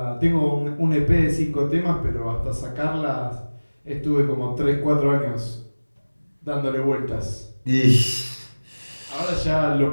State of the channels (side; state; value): both; inverted; correlation -1.00